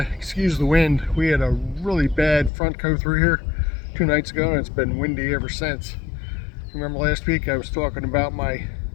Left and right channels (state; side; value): drops out; right; at 2.5 s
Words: excuse the wind. We had a really bad front go through here 2 nights ago and it's been windy ever since. Remember last week I was talking about my